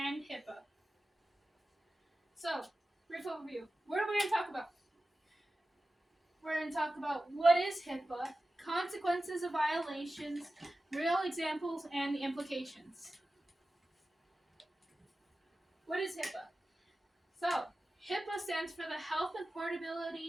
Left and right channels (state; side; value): normal; both; correlation 0.95